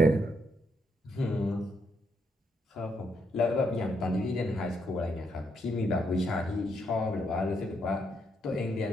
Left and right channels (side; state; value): both; normal; correlation 0.76